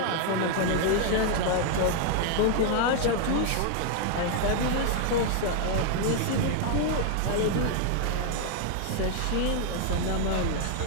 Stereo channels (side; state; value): both; different; correlation 0.00